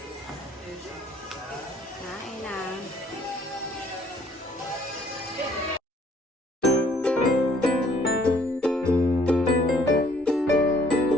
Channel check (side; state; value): both; normal; correlation 0.61